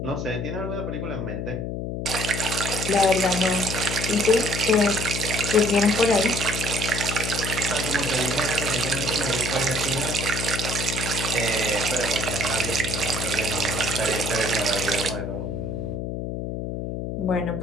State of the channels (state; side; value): noise; left; hum, 4 dB below the sound